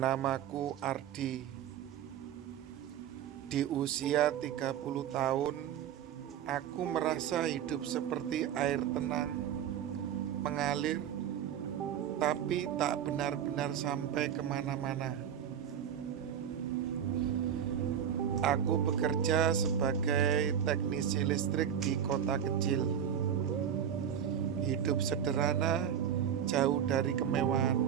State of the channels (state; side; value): quieter; left; 9.1 dB